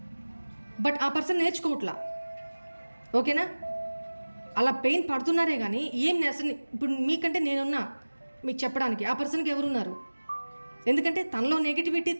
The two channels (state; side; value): inverted; both; correlation -1.00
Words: బట్ ఆ పర్సన్ నేర్చుకోవట్లా, ఓకేనా? అలా పెయిన్ పడుతున్నారే కానీ ఏం లెసన్. ఇప్పుడు మీకంటే నేనున్నా మీకు చెప్పడానికి, ఆ పర్సన్కి ఎవరున్నారు? ఎందుకంటే తనలో నెగిటివిటీ,